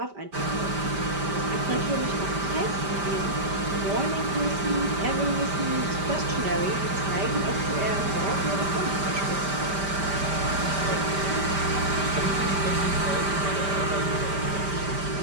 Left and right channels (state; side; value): late; left; 5.1 ms